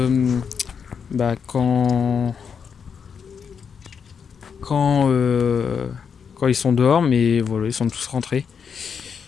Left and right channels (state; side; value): quieter; right; 6.6 dB